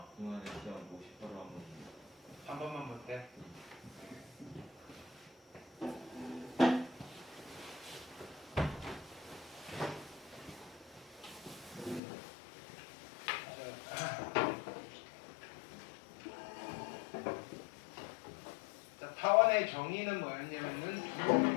기말에 시험 50%로 한 번. 한 번만 볼게. 자, 타원의 정의는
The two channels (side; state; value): right; drops out; at 12.0 s